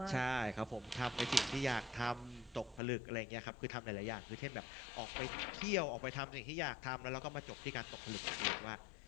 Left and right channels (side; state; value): right; drops out; at 2.8 s